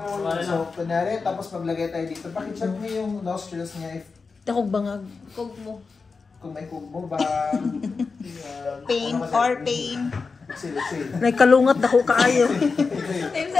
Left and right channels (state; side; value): quieter; right; 4.6 dB